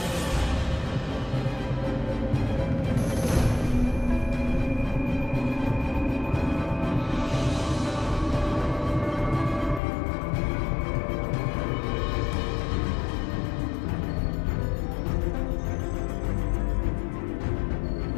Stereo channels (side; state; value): right; drops out; at 9.8 s